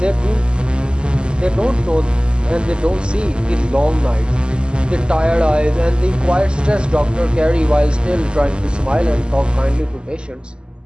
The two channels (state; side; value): late; left; 0.049 ms